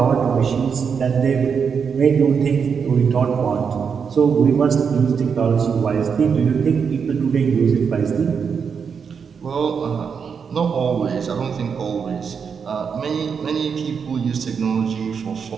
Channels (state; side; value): quieter; left; 6.4 dB